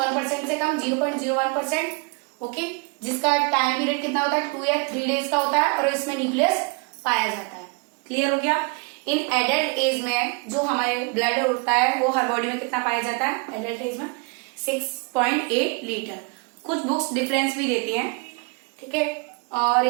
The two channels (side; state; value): left; quieter; 31.4 dB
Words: से कम, 0.01%. ओके, जिसका टाइम पीरियड कितना होता है? 2 या 3 डेज का होता है और इसमें न्यूक्लियस पाया जाता है. क्लियर हो गया. इन एडल्ट एज में जो हमारे ब्लड होता है वो हर बॉडी में कितना पाया जाता है? एडल्ट एज में 6.8 लीटर. कुछ बुक्स डिफरेंस भी देती हैं. ठीक है. और